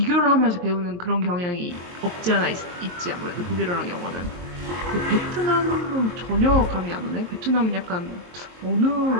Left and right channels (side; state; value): left; late; 23 ms